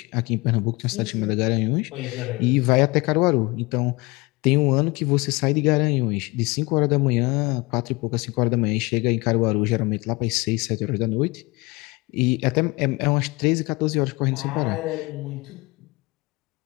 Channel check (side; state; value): right; quieter; 24.5 dB